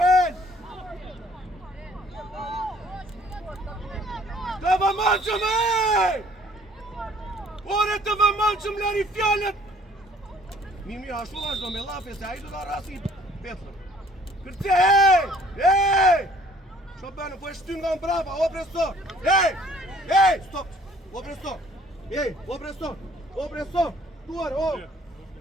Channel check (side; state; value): both; normal; correlation 0.57